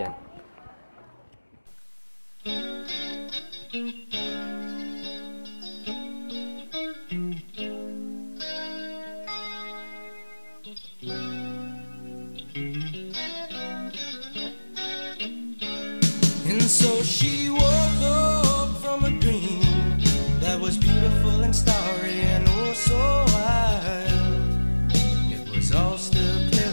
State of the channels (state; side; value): inverted; both; correlation -1.00